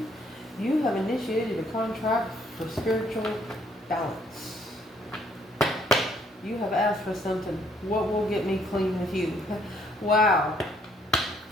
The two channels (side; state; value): both; normal; correlation 0.67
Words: You have initiated a contract for spiritual balance. You have asked for something. What will get me clean with you? Wow.